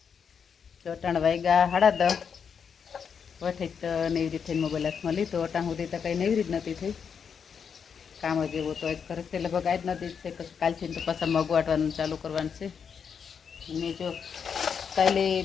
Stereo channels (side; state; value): right; quieter; 6.8 dB